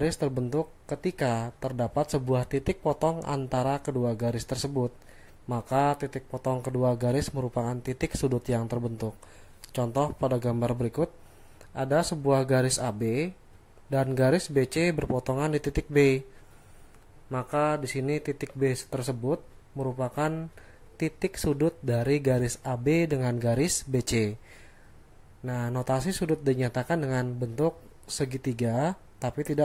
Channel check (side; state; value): both; identical; correlation 1.00